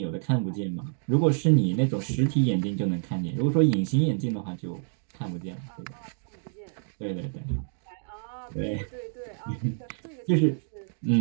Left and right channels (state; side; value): silent; left; 59 dB below the other